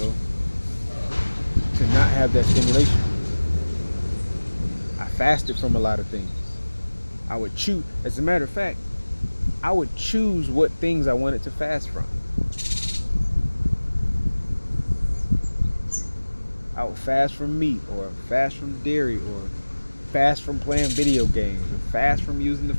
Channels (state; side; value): inverted; both; correlation -1.00